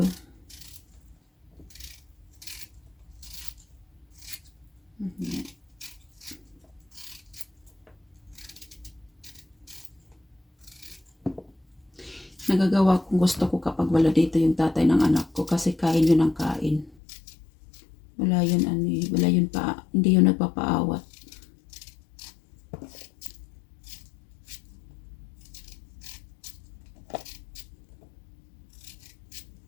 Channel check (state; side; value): drops out; right; at 16.9 s